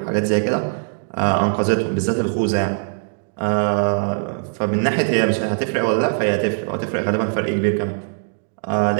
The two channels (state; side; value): silent; left; 63 dB below the other